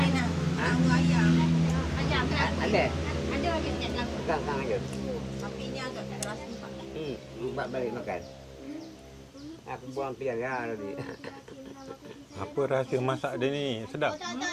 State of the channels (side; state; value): both; identical; correlation 1.00